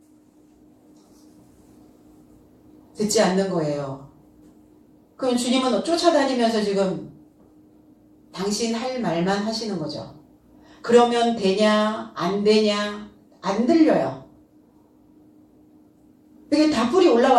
듣지 않는 거예요. 그럼 주님은 쫓아다니면서 지금 당신 할 말만 하시는 거죠. 그러면 되냐 안 되냐 안 들려요. 이게 다 뿔이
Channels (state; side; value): identical; both; correlation 1.00